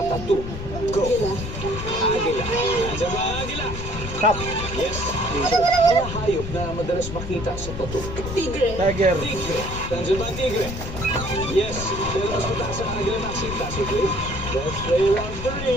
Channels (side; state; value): left; noise; rumble, 7 dB below the sound